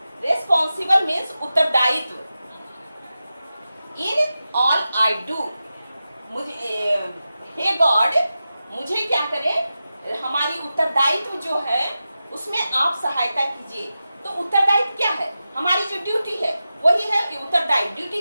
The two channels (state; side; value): inverted; both; correlation -0.92